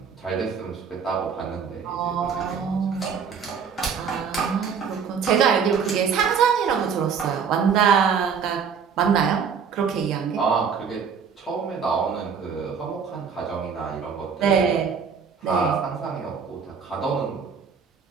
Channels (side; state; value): left; quieter; 6.5 dB